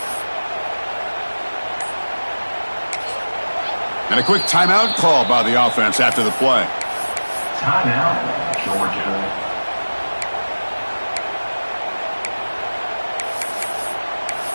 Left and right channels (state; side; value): inverted; both; correlation -1.00